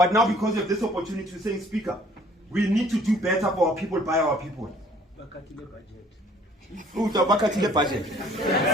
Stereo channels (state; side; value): normal; both; correlation 0.57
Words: now because of this opportunity to say, Speaker, we need to do better for our people, by our people. But